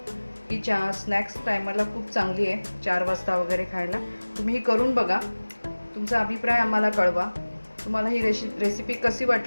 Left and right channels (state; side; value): inverted; both; correlation -1.00